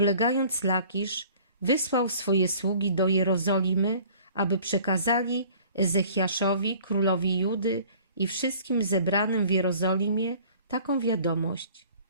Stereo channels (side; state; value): both; inverted; correlation -0.50